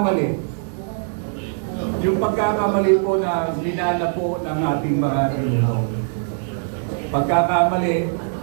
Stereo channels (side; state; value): left; silent; digital silence